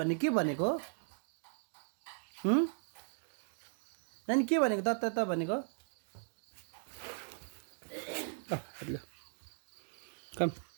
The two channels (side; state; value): left; silent; digital silence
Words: के भनेको नानी के भनेको त भनेको कम